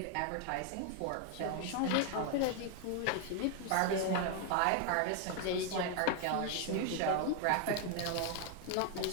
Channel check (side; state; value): both; different; correlation 0.01